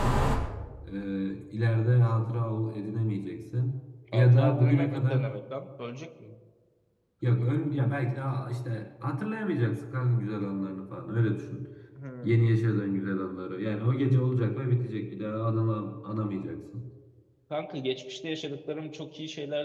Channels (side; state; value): both; identical; correlation 1.00